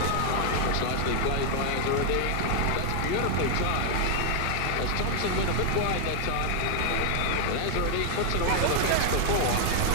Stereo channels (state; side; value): different; both; correlation 0.00